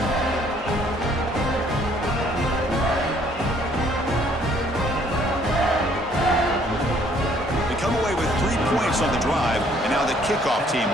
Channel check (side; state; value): both; normal; correlation 0.62